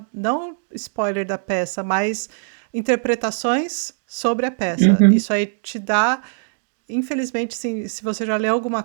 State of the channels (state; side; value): silent; left; digital silence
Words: spoiler da peça, mas interpretações sobre a peça. uhum, Isso aí te dá, infelizmente, se você já leu alguma